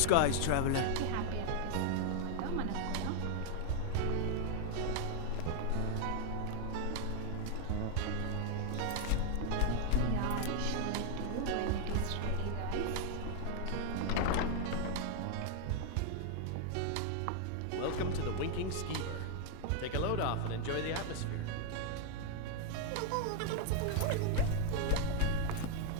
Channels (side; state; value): both; different; correlation 0.00